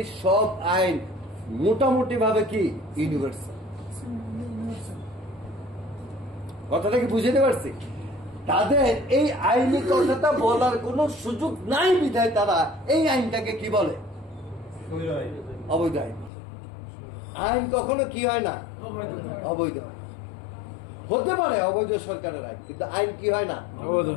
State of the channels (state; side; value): drops out; right; at 16.3 s